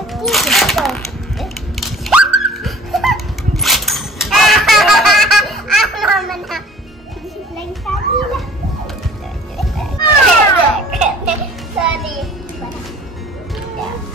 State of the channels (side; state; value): both; normal; correlation 0.49